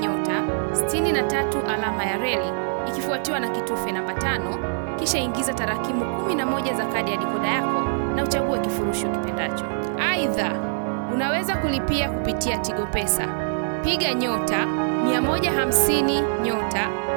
63 alama ya reli ikifuatiwa na kitufe namba 5, kisha ingiza tarakimu 11 za kadi ya dikoda yako na uchague kifurushi ukipendacho. Aidha, unaweza kulipia kupitia Tigo Pesa. Piga nyota 150 nyota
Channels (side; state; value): left; silent; digital silence